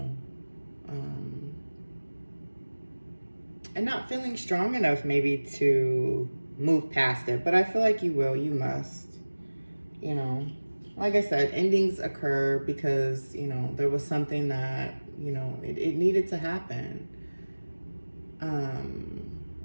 And not feeling strong enough maybe to move past it, but I feel like you will, you must, you know. Like I said, endings occur because, you know, there was something that, you know, it needed to happen.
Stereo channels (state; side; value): inverted; both; correlation -1.00